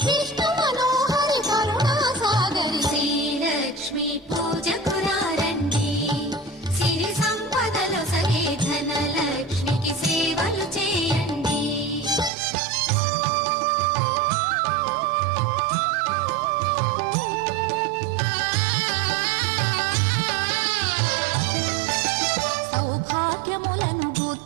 విష్ణు మనోహరి కరుణా సాగరి శ్రీలక్ష్మి పూజకు రండి సిరి సంపదలొసగే ధనలక్ష్మికి సేవలు చేయండి. సౌభాగ్యములను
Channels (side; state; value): left; drops out; at 12.3 s